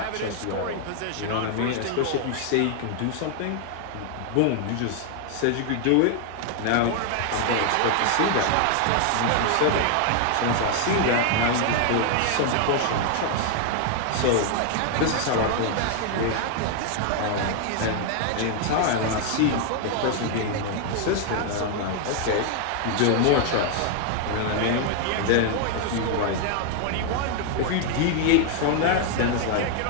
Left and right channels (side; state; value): both; different; correlation 0.00